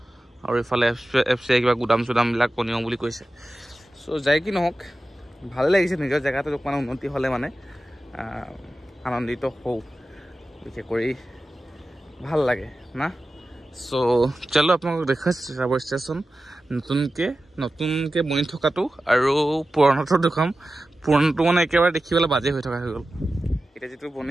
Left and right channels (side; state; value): both; normal; correlation 0.94